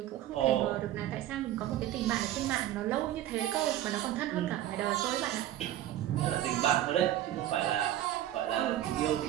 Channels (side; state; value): left; quieter; 12.9 dB